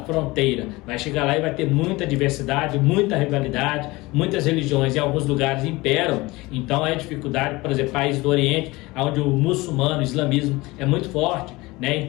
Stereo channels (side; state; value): right; quieter; 21.7 dB